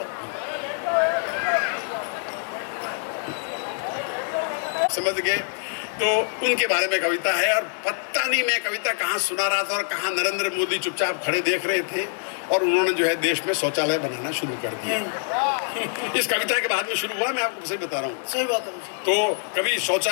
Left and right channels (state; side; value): silent; right; 61 dB below the other